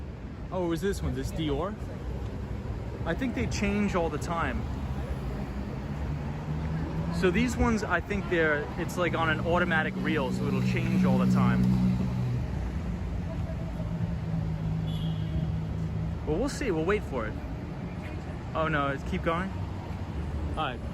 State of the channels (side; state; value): both; identical; correlation 1.00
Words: Oh, it was this one, this Dior? I think they change all the time. So these ones, I think it's like on an automatic reel, so it'll change all the time. Well, we'll see. We'll wait for it. Oh no, keep going. All right.